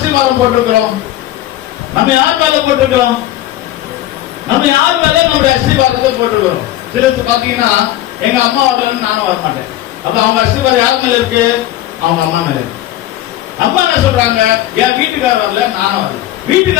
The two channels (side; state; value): right; quieter; 14.0 dB